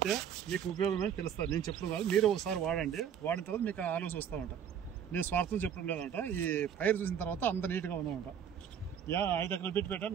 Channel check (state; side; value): quieter; left; 8.5 dB